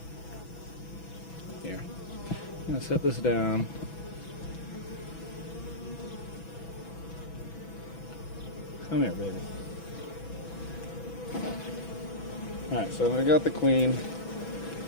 Here. I'm gonna set this down. Come here, baby. Alright, so we got the queen.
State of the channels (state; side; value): late; right; 6.1 ms